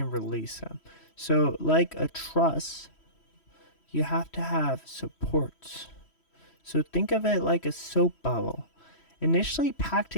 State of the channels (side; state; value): right; late; 3.1 ms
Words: release them. So, like a truss, you have to have supports. So think of it like a soap bubble, initially packed